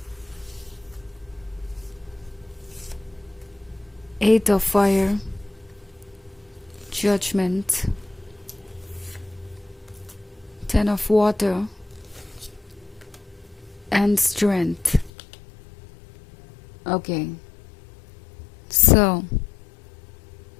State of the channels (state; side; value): drops out; right; at 15.1 s